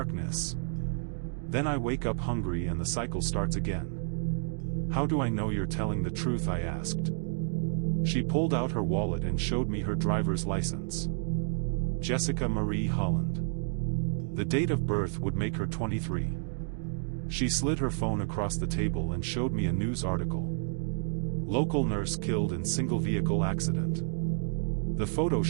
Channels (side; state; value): left; silent; digital silence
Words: Then I wake up hungry and the cycle starts again. "How do I know you're telling the truth?" I asked. She pulled out her wallet and showed me her driver's license. Jessica Marie Holland. The date of birth would make her 23. She slid her phone across the table and showed me a news article. Local nurse killed in single vehicle accident. The photo